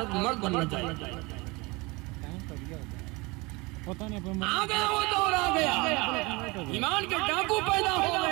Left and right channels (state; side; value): quieter; left; 25.1 dB